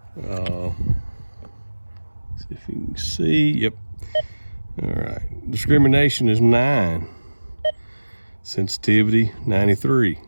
See if you can see. Yep. All right. Discrimination is 9. Sensitivity 93.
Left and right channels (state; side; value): inverted; both; correlation -1.00